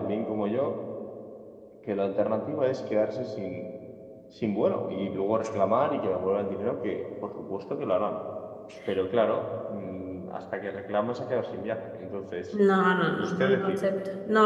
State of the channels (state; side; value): identical; both; correlation 1.00